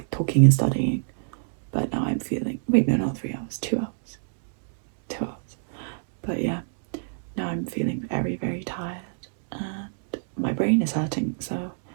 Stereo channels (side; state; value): left; silent; digital silence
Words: talking and studying. But now I'm feeling, wait, no, not 3 hours, 2 hours. 2 hours. But yeah, now I'm feeling very, very tired and my brain is hurting, so